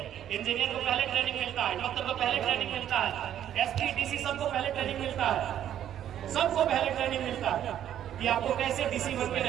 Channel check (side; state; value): left; quieter; 10.7 dB